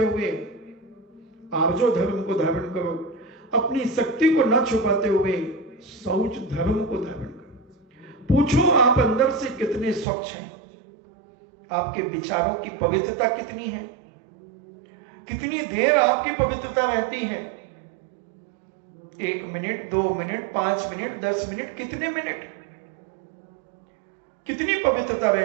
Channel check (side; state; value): left; drops out; at 10.1 s